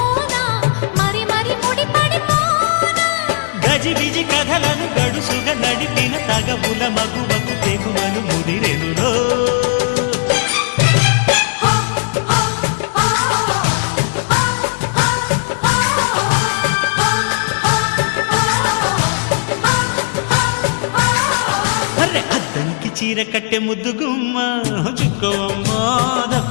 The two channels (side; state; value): right; silent; 57 dB below the other